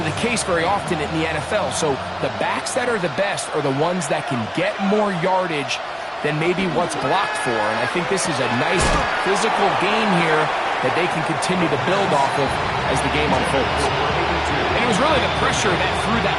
the case very often in the NFL. So the backs that are the best are the ones that can get more yardage than maybe what's blocked for, and I think this is a nice physical game here that they can continue to build off of as the game unfolds. And it was really the pressure that threw that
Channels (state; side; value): identical; both; correlation 1.00